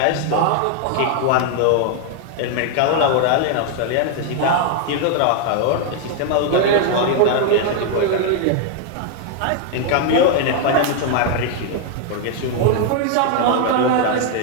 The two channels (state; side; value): different; both; correlation 0.00